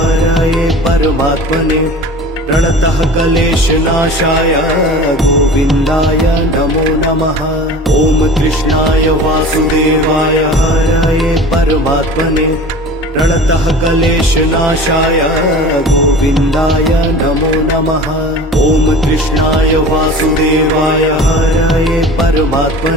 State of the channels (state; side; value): normal; both; correlation 0.39